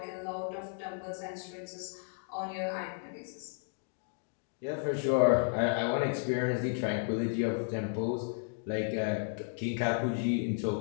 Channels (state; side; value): silent; right; 55 dB below the other